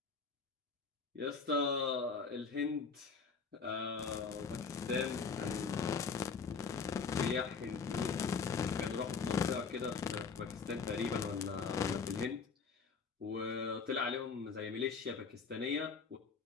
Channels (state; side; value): quieter; right; 5.2 dB